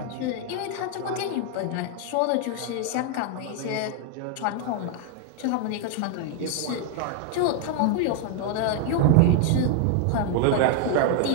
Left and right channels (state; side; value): different; both; correlation 0.00